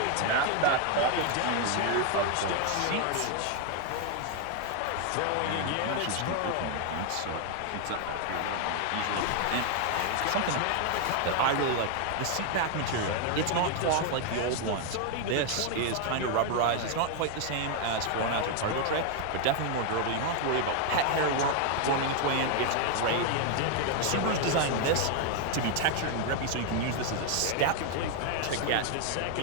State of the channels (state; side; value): different; both; correlation 0.00